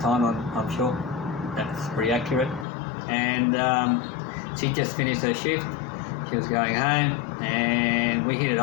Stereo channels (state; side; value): drops out; right; at 2.7 s